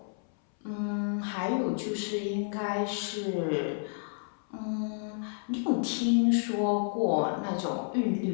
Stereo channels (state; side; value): silent; right; 57 dB below the other